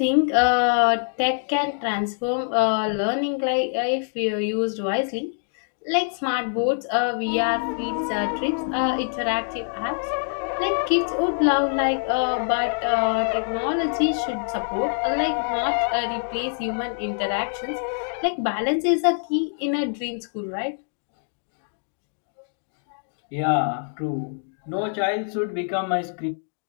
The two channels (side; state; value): right; silent; digital silence